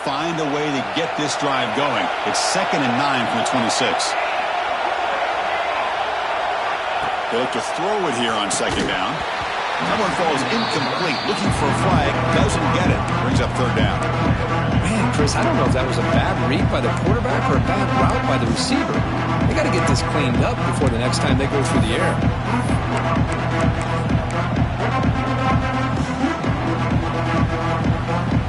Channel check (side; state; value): both; identical; correlation 1.00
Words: a way to get this drive going. It's 2nd and 9 from the 26. They look to throw it here on 2nd down. That one falls incomplete. Looking for a flag. Doesn't get it. Brings up 3rd down. Man, Chris, I don't know if that was a bad read by the quarterback or a bad route by the receiver. They got to get this cleaned up before the next time they go through the air.